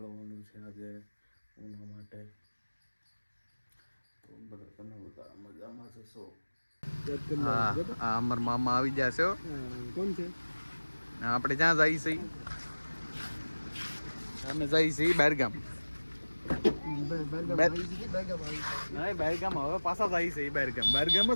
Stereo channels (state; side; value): inverted; both; correlation -1.00